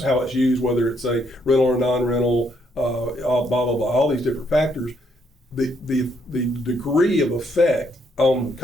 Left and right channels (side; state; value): both; normal; correlation 0.72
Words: how it's used, whether it's a rental or non-rental, blah, blah, blah, all these different factors. The degree of effect on the